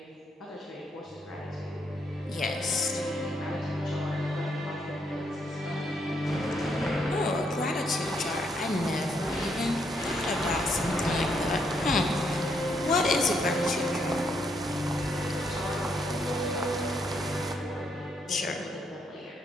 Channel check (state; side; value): normal; both; correlation 0.74